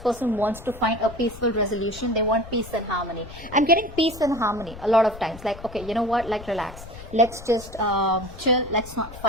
wants to find a peaceful resolution. They want peace and harmony. I'm getting peace and harmony a lot of times. Like, okay, you know what? Like, relax. Let's just chill. Let's not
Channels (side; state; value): left; noise; rumble, 15 dB below the sound